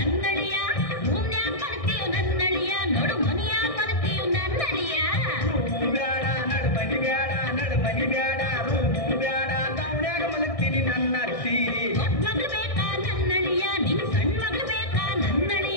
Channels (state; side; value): late; right; 1.6 ms